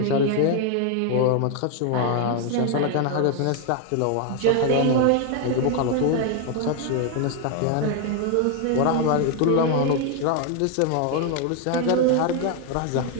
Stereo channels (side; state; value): both; different; correlation 0.01